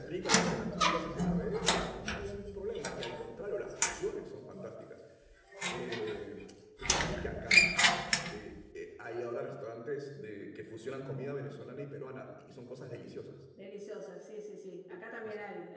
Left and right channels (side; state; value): both; identical; correlation 1.00